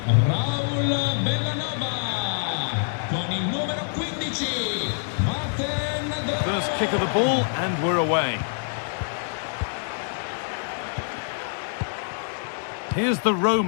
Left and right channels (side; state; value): right; silent; digital silence